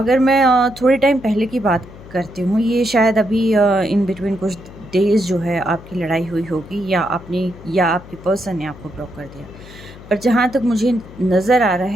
मैं थोड़े टाइम पहले की बात करती हूँ, ये शायद अभी इन बिटवीन कुछ डेज़ जो है आपकी लड़ाई हुई होगी, या आपके पर्सन ने आपको ब्लॉक कर दिया। पर जहाँ तक मुझे नज़र आ रहा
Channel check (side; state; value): left; noise; hum, 18 dB below the sound